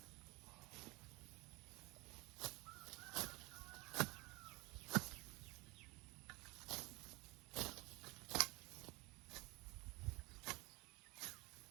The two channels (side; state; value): left; quieter; 24.4 dB